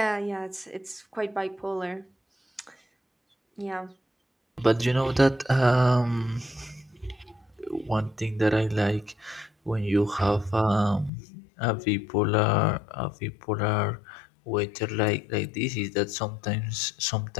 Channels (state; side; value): drops out; right; at 11.1 s